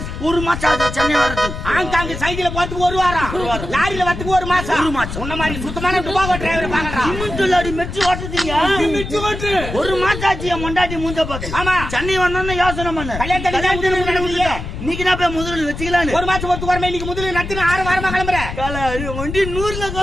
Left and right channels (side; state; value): left; noise; rumble, 7 dB below the sound